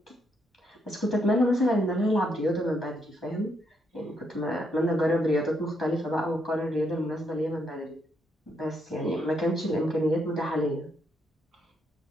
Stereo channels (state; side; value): normal; both; correlation 0.76